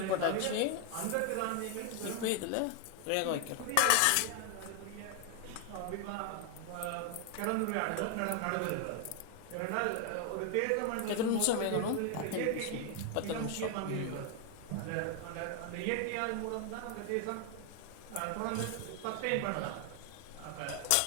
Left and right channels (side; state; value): both; different; correlation 0.00